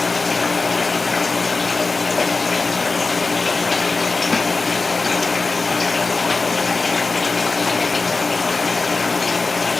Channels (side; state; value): right; quieter; 3.8 dB